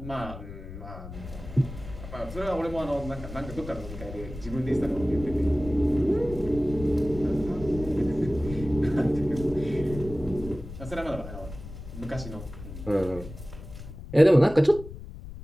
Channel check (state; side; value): noise; left; rumble, 12 dB below the sound